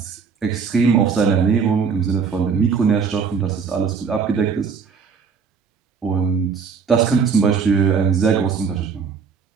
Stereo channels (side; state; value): left; quieter; 5.8 dB